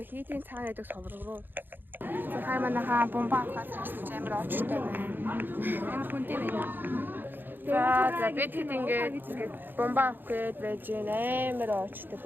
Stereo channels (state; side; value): late; left; 0.094 ms